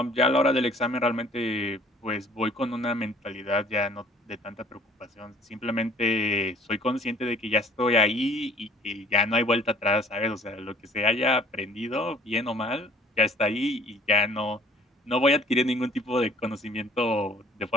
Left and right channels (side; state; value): both; normal; correlation 0.55